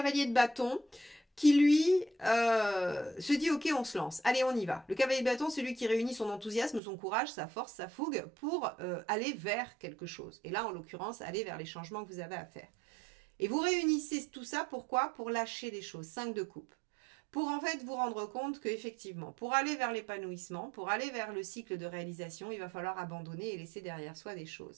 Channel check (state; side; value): drops out; left; at 6.8 s